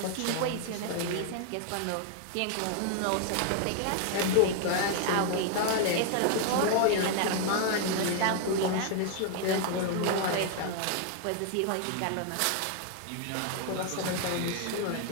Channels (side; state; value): both; different; correlation 0.00